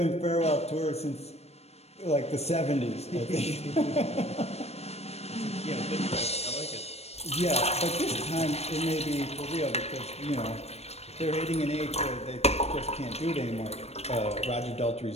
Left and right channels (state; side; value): late; right; 0.31 ms